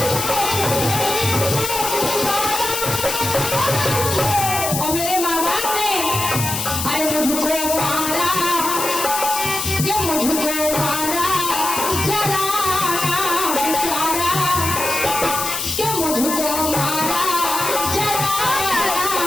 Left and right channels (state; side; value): noise; left; hiss, 3 dB below the sound